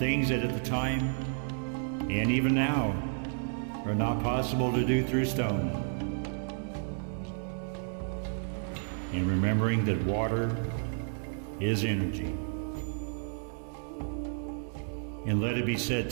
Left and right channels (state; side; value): silent; left; 57 dB below the other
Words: that at the time and even now are not possible to do through stone. And remembering that water is energy. And let it be said